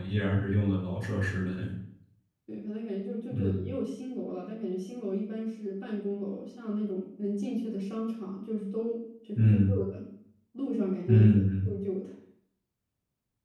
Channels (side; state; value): both; identical; correlation 1.00